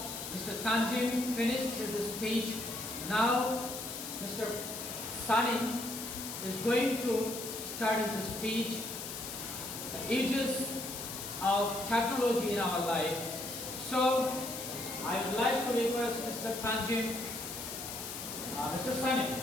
Mr. Tanjim finished his speech. Now, Mr. Sani is going to start his speech. The ages of technology in our life. So, I would like to request Mr. Tanjim,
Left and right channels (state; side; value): noise; left; hiss, 7 dB below the sound